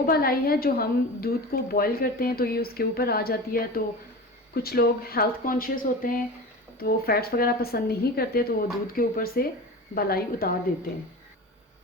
बालाई है जो हम दूध को बॉईल करते हैं तो ये उसके ऊपर आ जाती है। तो कुछ लोग हेल्थ कॉन्शियस होते हैं तो वो फैट्स वगैरह पसंद नहीं करते, तो वो दूध के ऊपर से बालाई उतार देते हैं।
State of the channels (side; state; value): both; normal; correlation 0.31